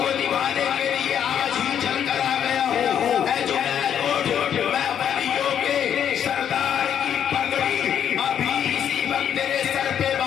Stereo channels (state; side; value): quieter; right; 9.0 dB